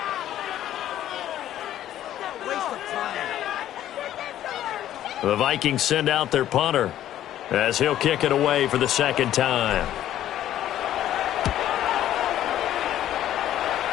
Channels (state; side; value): quieter; right; 12.2 dB